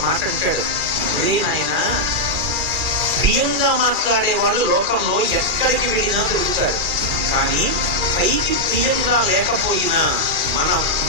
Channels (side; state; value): left; late; 2.4 ms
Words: మాట అంటాడు, రే నాయన, ప్రియంగా మాట్లాడేవాడు లోకంలో ఎక్కడికి వెళ్ళినా దొరుకుతాడు, కానీ పైకి ప్రియంగా లేకపోయినా మన